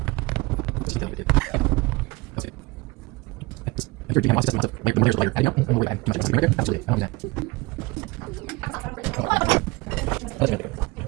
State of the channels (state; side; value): quieter; left; 23.1 dB